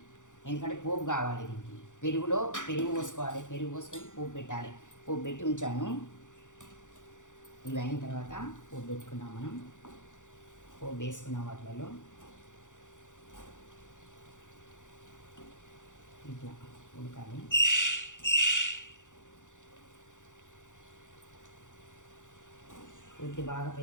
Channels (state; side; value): late; right; 0.86 ms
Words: ఎందుకంటే పోపు కావాలి దీనికి. పెరుగు పోసుకోవాలి, పెరుగు పోసుకొని పోపు పెట్టాలి. పోపు పెట్టి ఉంచాను. ఇవి అయిన తర్వాత పోపు పెట్టుకున్నాం. మనం పోపు వేసుకున్నాం వాటిలలో. ఇట్లా ఉడకాలి. పూర్తి బాగా